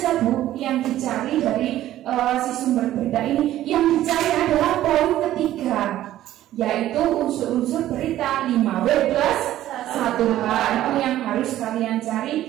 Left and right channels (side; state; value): left; quieter; 13.5 dB